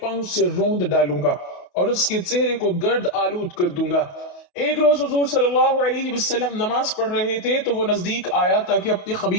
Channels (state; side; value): late; right; 28 ms